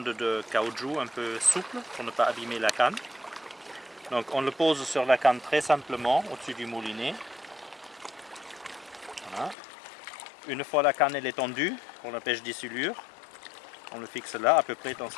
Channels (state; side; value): drops out; right; at 9.6 s